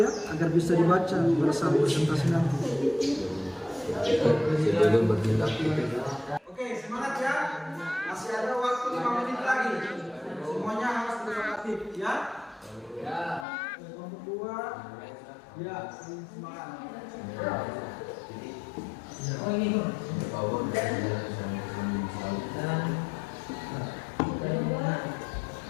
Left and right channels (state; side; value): drops out; right; at 13.5 s